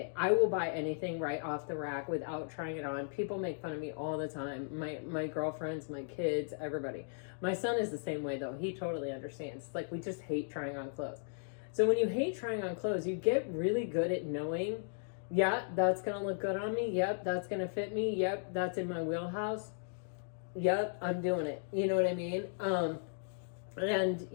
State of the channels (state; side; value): silent; right; digital silence